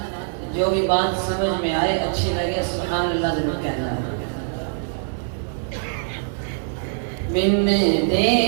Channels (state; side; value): silent; left; 64 dB below the other